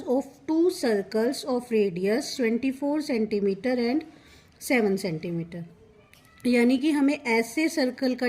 of two circles of radius 24 centimetre and 7 centimetre. यानी कि हमें ऐसे सर्कल का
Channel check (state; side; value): identical; both; correlation 1.00